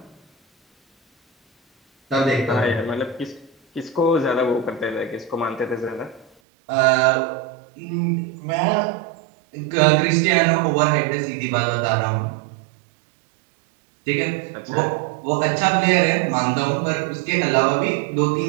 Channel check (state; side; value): drops out; left; at 6.3 s